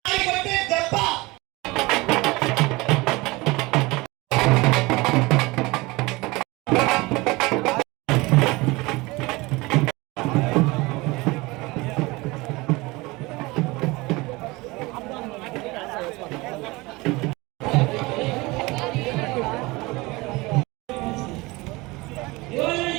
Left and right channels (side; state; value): left; quieter; 22.9 dB